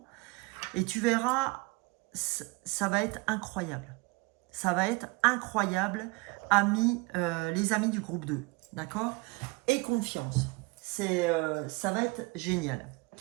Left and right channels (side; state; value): left; quieter; 26.8 dB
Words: Et tu verras, ça va être incroyable. Ça va être incroyable, amis, les amis du groupe 2. D'accord? Et confiance. Ça va être génial.